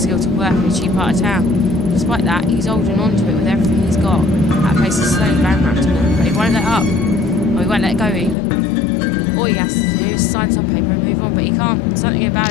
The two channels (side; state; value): right; drops out; at 8.3 s